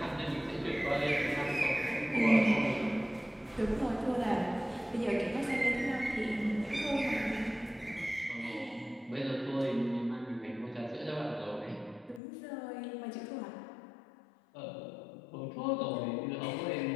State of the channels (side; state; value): right; drops out; at 12.2 s